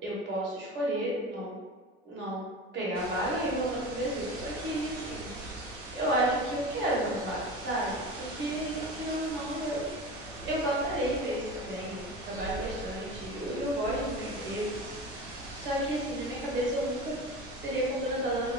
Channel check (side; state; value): both; normal; correlation 0.31